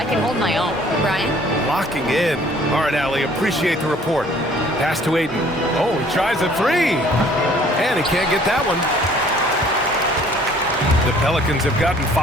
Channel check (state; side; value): normal; both; correlation 0.56